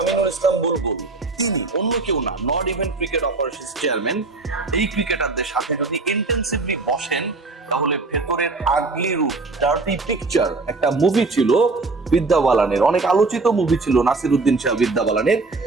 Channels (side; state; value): left; quieter; 3.6 dB